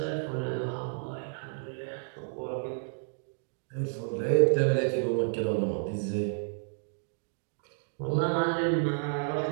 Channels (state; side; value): silent; left; digital silence